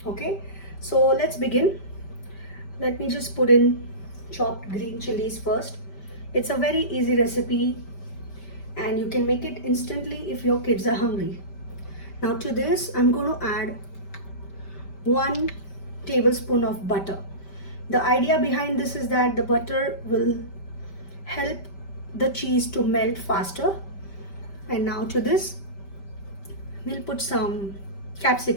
Okay, so let's begin. Let me just put in chopped green chilies first. It's a very easy recipe and you can make it instantly if your kids are hungry. Now to this I'm going to add 1 tablespoon of butter. The idea behind this is that the butter will help the cheese to melt faster. And now to this we'll put some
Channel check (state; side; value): late; right; 5.1 ms